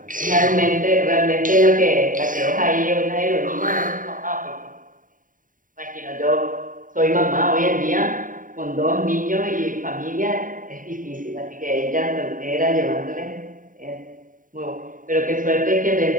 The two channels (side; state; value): left; late; 0.39 ms